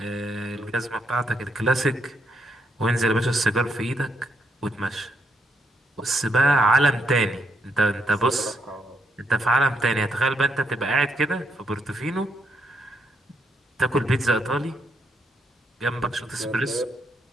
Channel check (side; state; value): both; normal; correlation 0.77